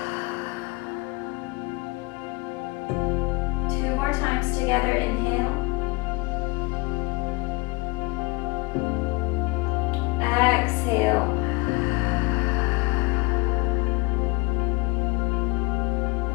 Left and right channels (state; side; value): quieter; right; 25.2 dB